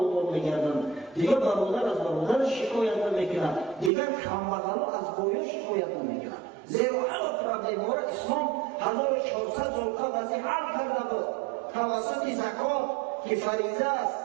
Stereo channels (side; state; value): left; drops out; at 3.9 s